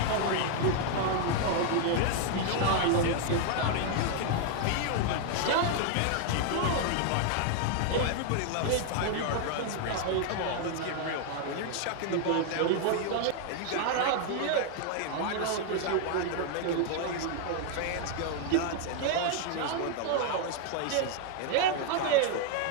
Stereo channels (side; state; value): both; different; correlation 0.00